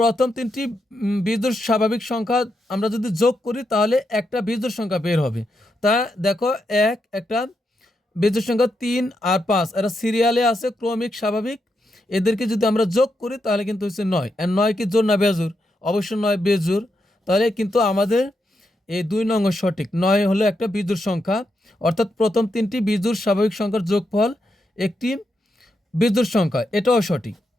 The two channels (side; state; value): both; normal; correlation 0.83